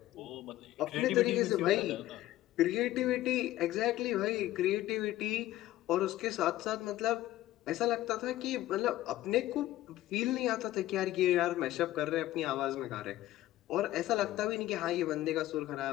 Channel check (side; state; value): right; quieter; 15.1 dB